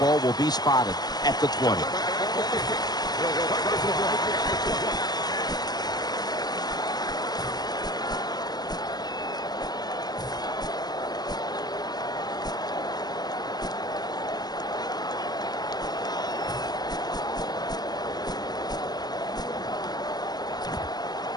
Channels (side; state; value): right; late; 0.19 ms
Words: will be spotted at the 20.